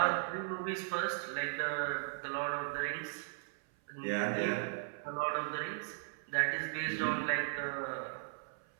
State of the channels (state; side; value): silent; left; 53 dB below the other